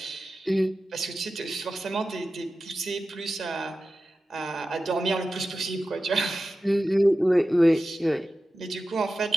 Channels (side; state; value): both; normal; correlation 0.93